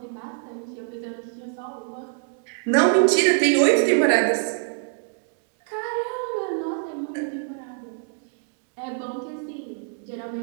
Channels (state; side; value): silent; left; digital silence